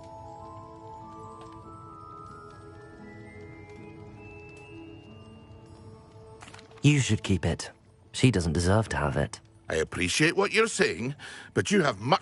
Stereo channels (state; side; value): identical; both; correlation 1.00